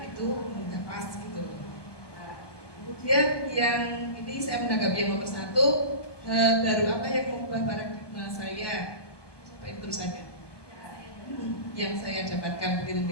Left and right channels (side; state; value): right; late; 1.2 ms